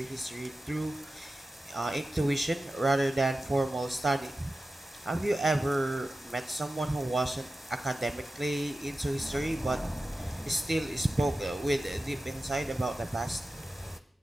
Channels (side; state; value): both; normal; correlation 0.94